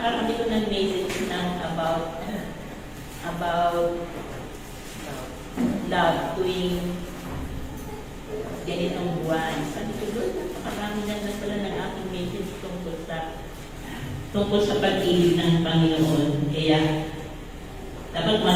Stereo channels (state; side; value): identical; both; correlation 1.00